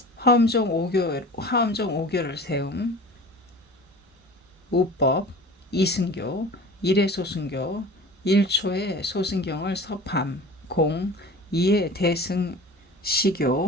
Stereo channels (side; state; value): both; normal; correlation 0.40